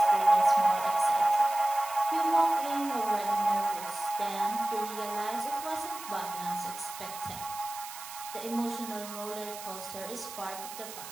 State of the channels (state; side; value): noise; right; hiss, 12 dB below the sound